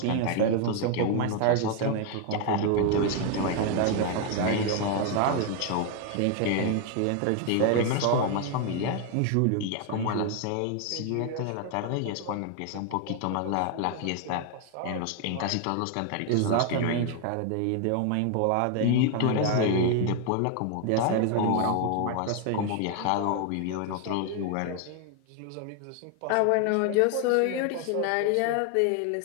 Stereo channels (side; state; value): both; different; correlation 0.01